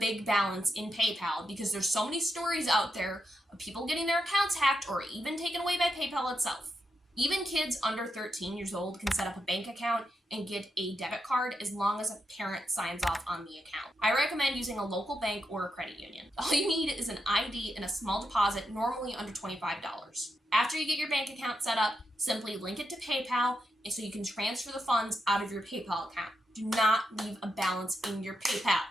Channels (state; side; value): normal; both; correlation 0.85